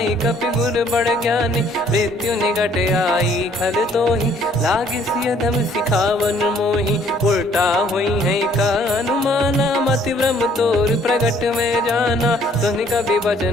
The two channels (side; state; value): both; normal; correlation 0.61